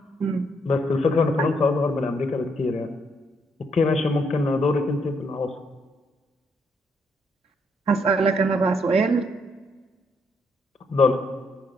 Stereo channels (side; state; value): both; normal; correlation 0.74